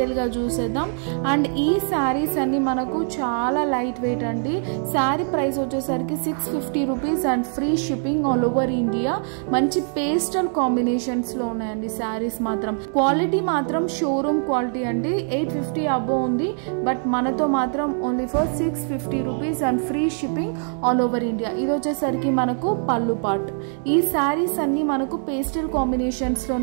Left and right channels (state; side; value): silent; left; 56 dB below the other